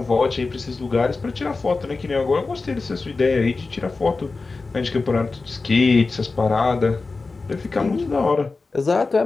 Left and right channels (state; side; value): quieter; right; 3.9 dB